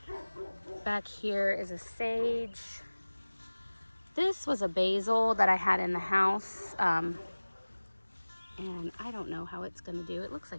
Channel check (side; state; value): both; inverted; correlation -1.00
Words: Back here is a sage. This was a basil that I had in the house. And I don't know how it's gonna do. It looks